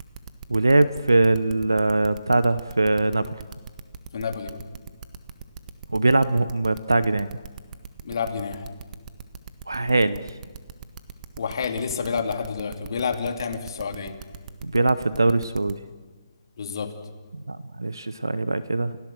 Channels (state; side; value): inverted; both; correlation -0.91